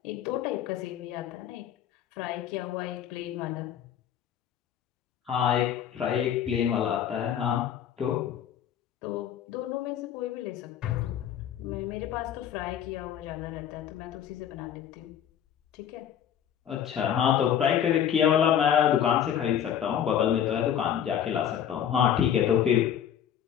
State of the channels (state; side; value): quieter; right; 9.6 dB